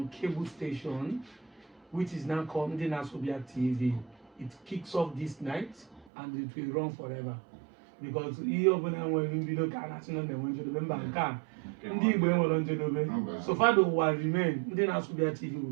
cable station, which is now called Njena Sobia TV. It kicks off this night and it will run forever. Because so far the will remain, then Asubia TV will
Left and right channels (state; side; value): drops out; left; at 6.1 s